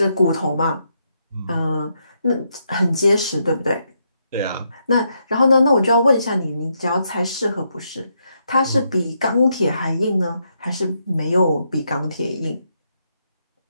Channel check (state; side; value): inverted; both; correlation -0.79